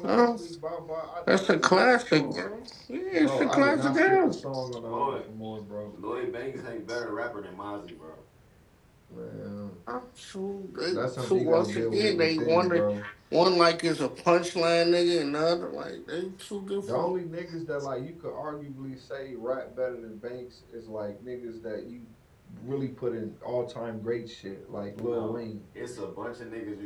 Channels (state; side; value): identical; both; correlation 1.00